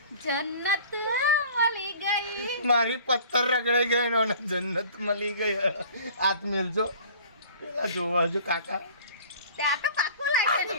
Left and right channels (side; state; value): both; inverted; correlation -0.46